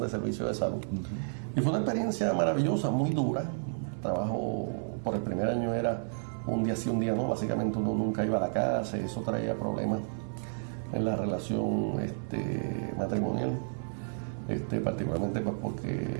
servicios de salud. Y fue una experiencia maravillosa, muy dura. Trabajo por el primer año era un día sí, un día no. Básicamente uno nunca iba a la casa y eso traía problemas en la relación matrimonial. Particularmente pues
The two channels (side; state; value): left; silent; 57 dB below the other